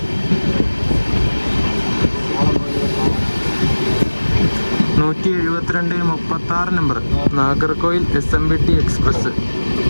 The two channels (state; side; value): inverted; both; correlation -1.00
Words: Number Nagercoil SMBT express.